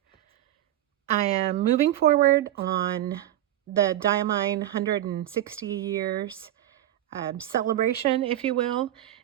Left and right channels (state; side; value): quieter; left; 13.2 dB